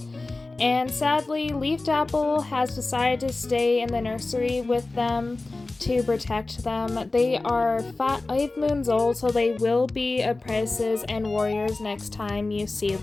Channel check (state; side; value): quieter; right; 3.3 dB